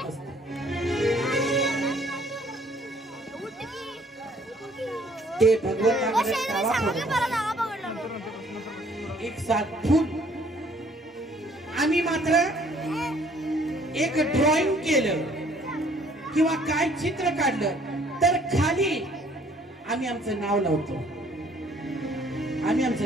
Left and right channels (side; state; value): both; normal; correlation 0.60